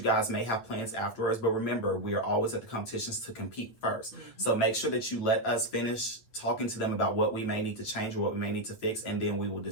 guys may have plans afterwards, but remember, we are always at the competitions to compete first. So make sure that you let us finish talking to them about what we may need to change or what we may need to fix, and then we will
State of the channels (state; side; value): late; right; 9.0 ms